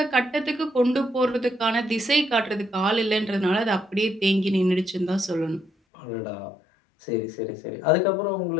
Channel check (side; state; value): right; drops out; at 5.7 s